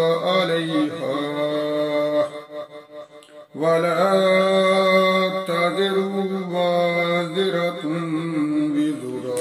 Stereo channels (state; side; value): identical; both; correlation 1.00